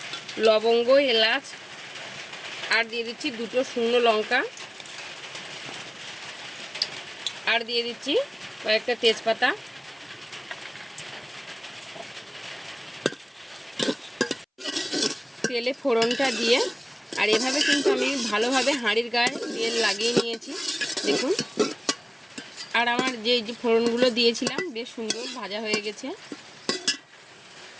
লবঙ্গ, এলাচ, আর দিয়ে দিচ্ছি দুটো শুকনো লঙ্কা, আর দিয়ে দিচ্ছি কয়েকটা তেজপাতা। তেলে ফোড়নটা দিয়ে, আর এভাবে কিন্তু আমি ভালোভাবে হাঁড়ির গায়ে তেল লাগিয়ে নিয়েছি দেখুন। আর আমার যে ফোড়নগুলো দিয়েছিলাম বেশ সুন্দর ভাজা হয়ে গেছে।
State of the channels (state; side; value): identical; both; correlation 1.00